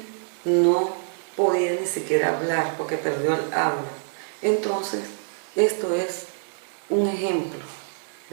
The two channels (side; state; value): left; silent; digital silence